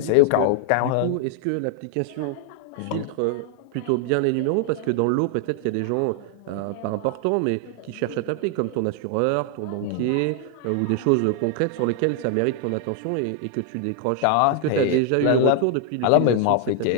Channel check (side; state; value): both; different; correlation 0.00